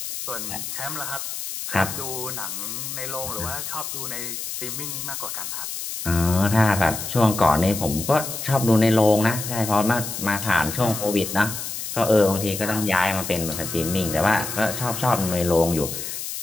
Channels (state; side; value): noise; left; hiss, 6 dB below the sound